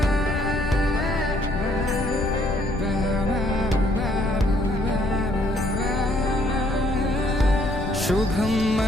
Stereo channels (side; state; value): left; noise; rumble, 4 dB below the sound